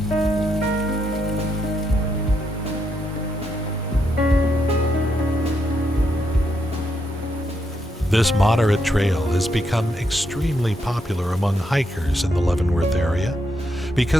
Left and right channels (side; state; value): both; normal; correlation 0.79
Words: This moderate trail has become extremely popular among hikers in the Leavenworth area